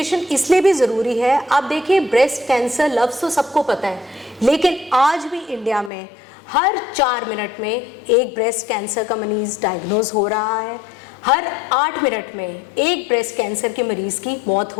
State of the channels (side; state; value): right; drops out; at 5.9 s